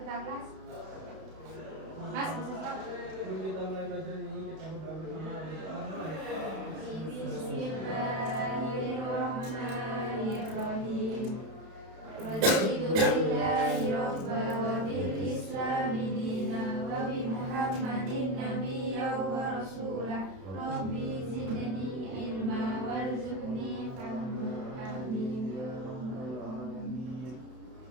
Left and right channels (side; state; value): left; late; 31 ms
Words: kelas. Mas, Sebelum kita mulai belajar ini, kita berdoa bersama. Bismillahirrahmanirrahim. Raditu billahi rabba wa bil islami dina wa bi Muhammadin nabiyya wa rasulah. Rabbi zidni ilma warzuqni fahma. Amin.